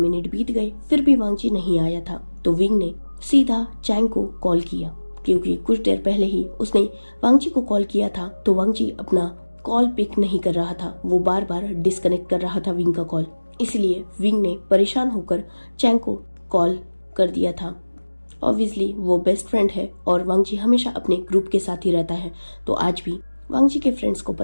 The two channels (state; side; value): inverted; both; correlation -1.00